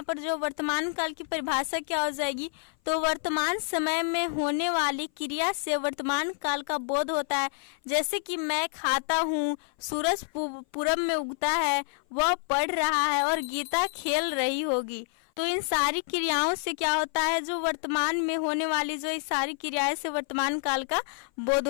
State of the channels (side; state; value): right; silent; 57 dB below the other